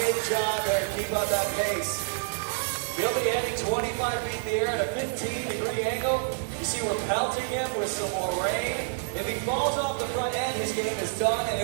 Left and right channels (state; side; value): silent; left; digital silence